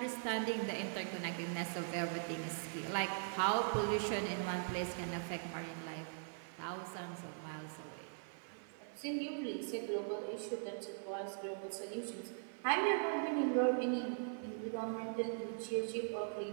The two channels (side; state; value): left; silent; 50 dB below the other